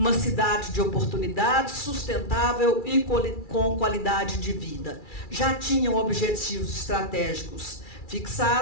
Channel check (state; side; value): late; right; 2.3 ms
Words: cidade de oportunidades, sustentável e com qualidade de vida. Já tinham objetivos estratégicos